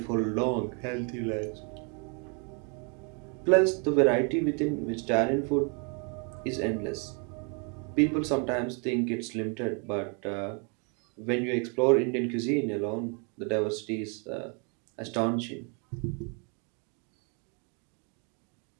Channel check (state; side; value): quieter; left; 36.8 dB